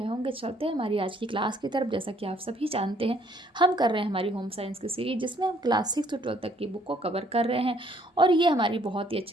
होंगे। चलते हैं हमारी आज की क्लास की तरफ। जैसा कि आप सभी जानते हैं, हम कर रहे हैं हमारी होम साइंस की सीरीज, जिसमें हम क्लास 6 से 12 तक की बुक को कवर कर रहे हैं और ये हमारी बहुत ही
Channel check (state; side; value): normal; both; correlation 0.64